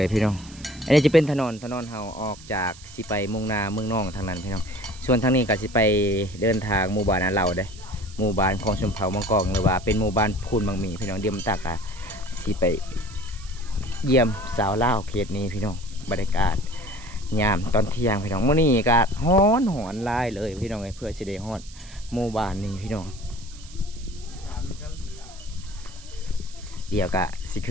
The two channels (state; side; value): noise; right; hiss, 20 dB below the sound